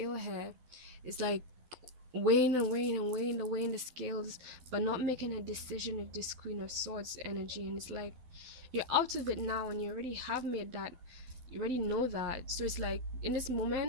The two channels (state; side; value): late; left; 12 ms